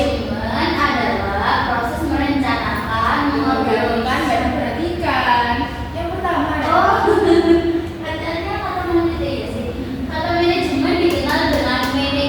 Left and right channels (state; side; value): identical; both; correlation 1.00